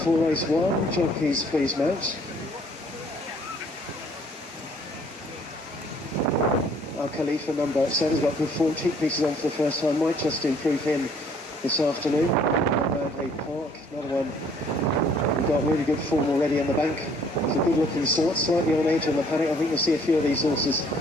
race 1. Jockeys please mount. Our Khalifa number 7 has got good form. Cheek pieces on for the first time. Might just improve him this afternoon. Manley Park, another one. We've got really good form already in the bank. It's a good looking sort, slightly on edge in the paddock. I think you'll see a few of these horses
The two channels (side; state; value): both; normal; correlation 0.60